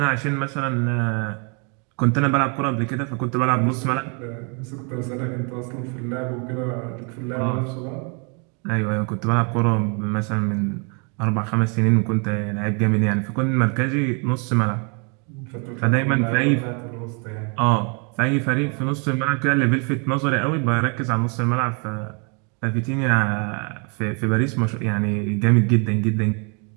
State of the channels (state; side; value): quieter; left; 35.9 dB